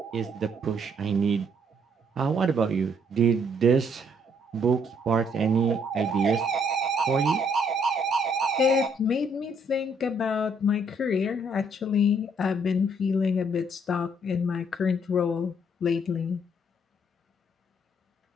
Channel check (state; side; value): normal; both; correlation 0.68